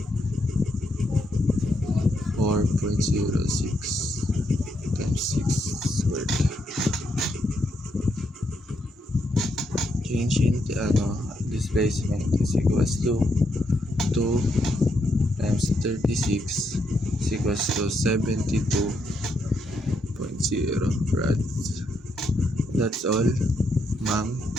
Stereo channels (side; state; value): both; normal; correlation 0.78